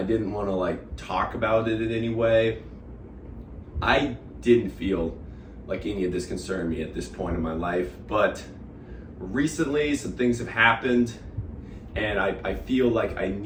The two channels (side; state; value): both; identical; correlation 1.00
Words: didn't want to talk about it in any way. I didn't feel like any of this concerned me at this point in my life, but recently some things have happened and I feel like I